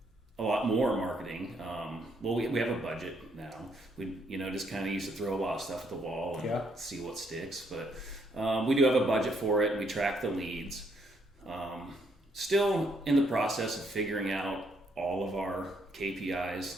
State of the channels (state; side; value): normal; both; correlation 0.72